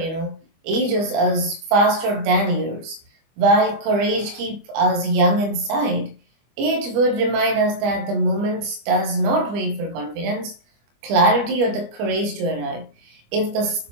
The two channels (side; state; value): left; late; 25 ms